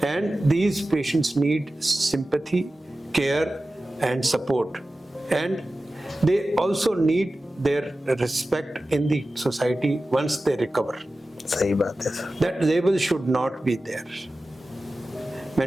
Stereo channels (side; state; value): both; normal; correlation 0.95